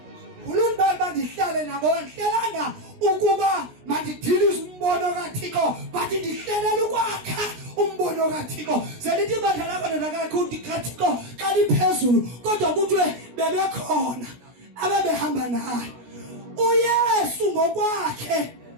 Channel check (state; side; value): late; left; 16 ms